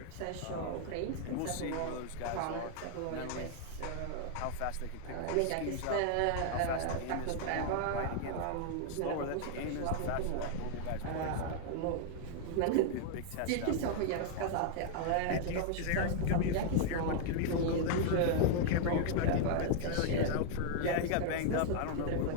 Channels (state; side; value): different; both; correlation 0.00